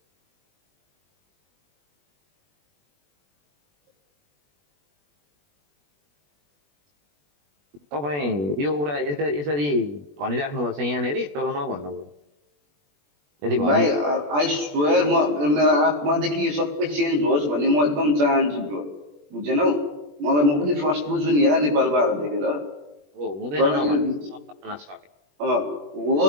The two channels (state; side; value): late; left; 21 ms